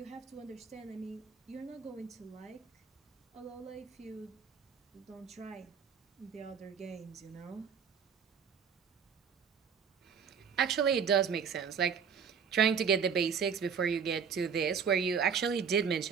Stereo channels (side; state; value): left; quieter; 6.7 dB